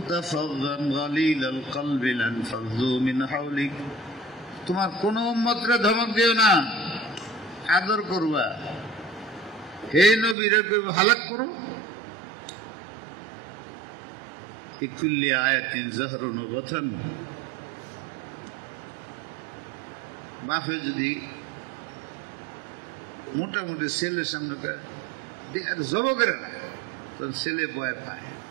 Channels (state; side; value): drops out; left; at 10.4 s